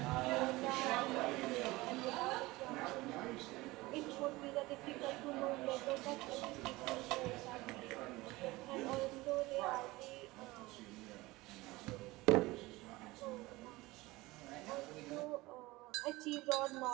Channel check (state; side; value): quieter; left; 20.6 dB